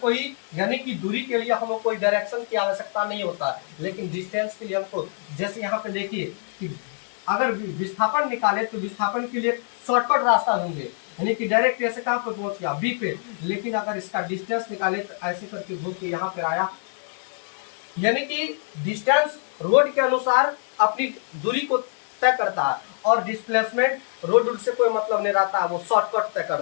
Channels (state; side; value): silent; right; digital silence